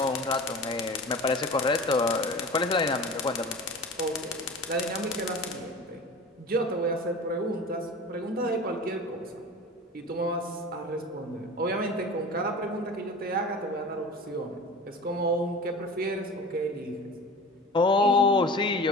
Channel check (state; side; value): normal; both; correlation 0.36